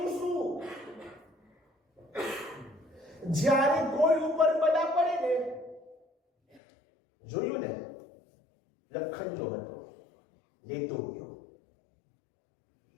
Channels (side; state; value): right; drops out; at 6.6 s